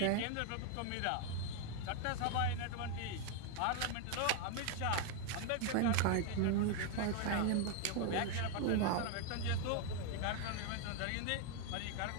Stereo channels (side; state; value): both; different; correlation 0.00